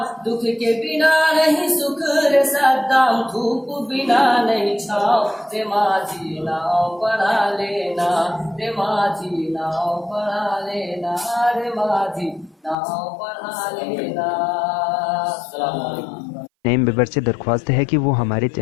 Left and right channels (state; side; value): drops out; right; at 12.8 s